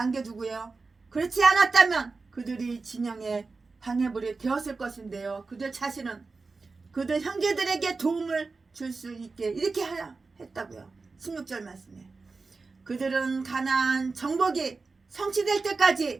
그렇지 않았다면 그들이 진영의 방해물이 되었을 것인데요. 그들 자신은 그들 형제들에게 도움을 줄 수 있게 이렇게 했다고요. 16절 말씀에 그들은 가나안 정복이 성취될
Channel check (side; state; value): left; quieter; 4.1 dB